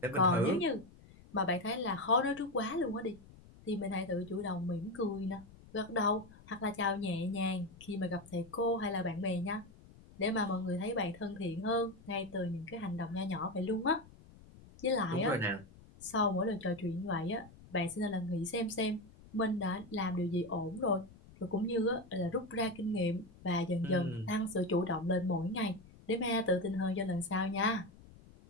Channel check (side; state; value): left; noise; rumble, 22 dB below the sound